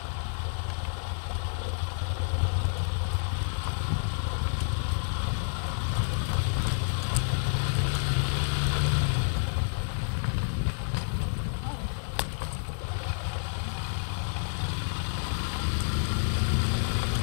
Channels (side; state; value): right; silent; 58 dB below the other